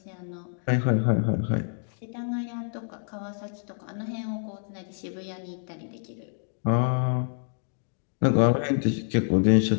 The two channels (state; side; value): silent; right; digital silence